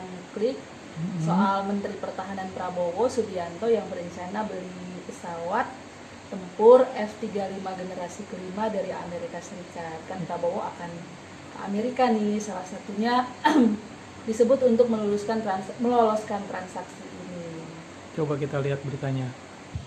klik soal Menteri Pertahanan Prabowo Subianto yang berencana beli pesawat tempur F-35 generasi kelima dari Amerika Serikat. Kan Prabowo akan ke Amerika nih, salah satunya disebut untuk meloloskan transaksi ini. Coba kita lihat beritanya.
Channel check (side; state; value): both; identical; correlation 1.00